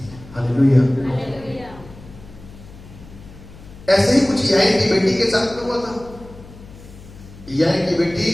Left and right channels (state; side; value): noise; left; hum, 19 dB below the sound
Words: हालेलुया। ऐसे ही कुछ याइन की बेटी के साथ में हुआ था। याइन की बेटी